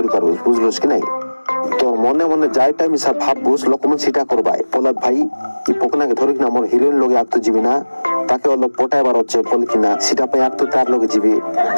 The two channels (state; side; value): inverted; both; correlation -1.00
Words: পারবো বুঝলস কি নাই তোর মনে মনে যাইটা মিশা ভাববুস লোকমন সেটা করবাই পোলাদ ভাই এই পোকনাকে ধরি কিনা মোর হিরোইন লগে আক্ত জিবি না তাকে অল্প পটাইবার হচ্ছে বল কিনা সেটা পাই আক্ত তার লগে জিবি